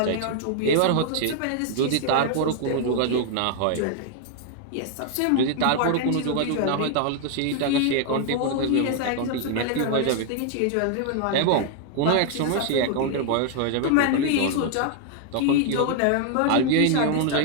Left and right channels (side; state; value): both; different; correlation 0.00